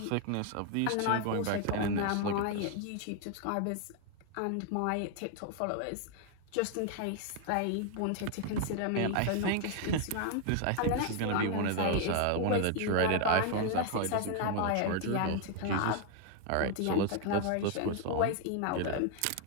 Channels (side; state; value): both; different; correlation 0.00